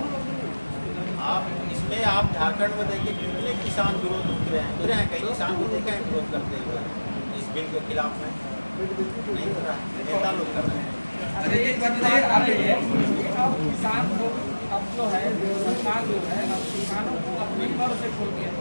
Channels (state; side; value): inverted; both; correlation -1.00